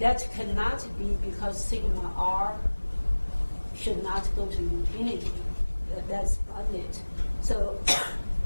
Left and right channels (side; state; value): both; inverted; correlation -1.00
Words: cannot be because sigma r should not go to infinity. That's bounded. So